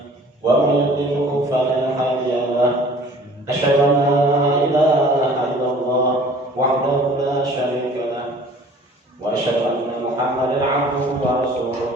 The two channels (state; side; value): normal; both; correlation 0.49